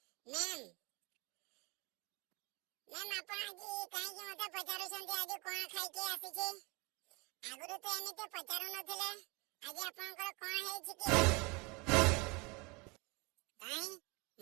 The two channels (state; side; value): quieter; left; 27.8 dB